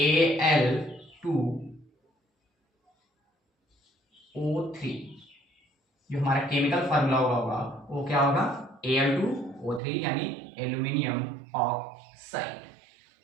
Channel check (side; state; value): left; drops out; at 9.8 s